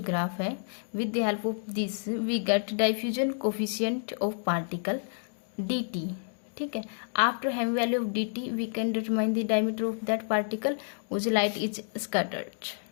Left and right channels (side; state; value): right; silent; digital silence